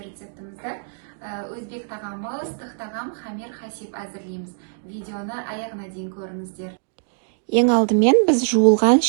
рецептімізді өзбек тағамы, ыстық тағам хамир хасиб әзірлейміз. Видеоны аяғына дейін көріңіздер. Ең алдымен біз жуылған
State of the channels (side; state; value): left; silent; digital silence